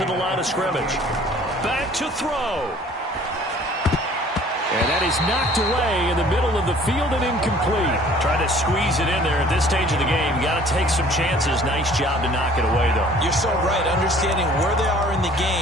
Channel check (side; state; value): both; normal; correlation 0.52